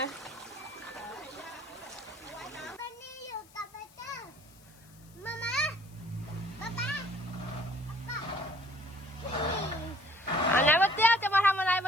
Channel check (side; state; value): left; noise; hiss, 26 dB below the sound